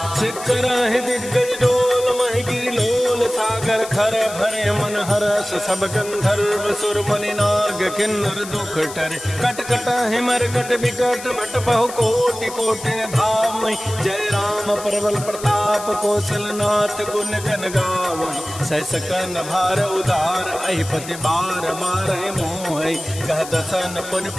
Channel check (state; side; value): noise; left; hiss, 12 dB below the sound